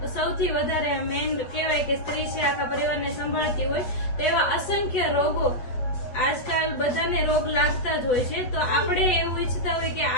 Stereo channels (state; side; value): late; right; 7.9 ms